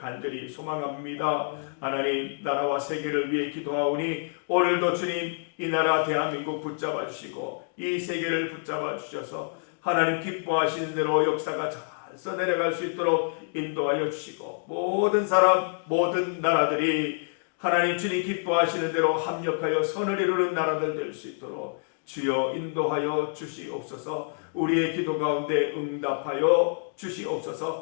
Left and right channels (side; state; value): right; silent; digital silence